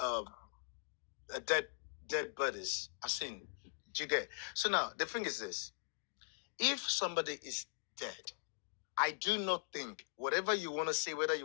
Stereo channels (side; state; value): right; silent; digital silence